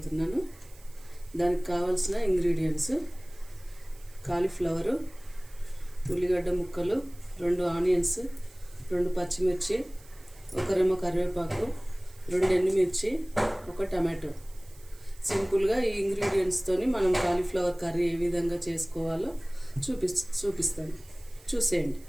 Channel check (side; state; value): right; noise; hiss, 25 dB below the sound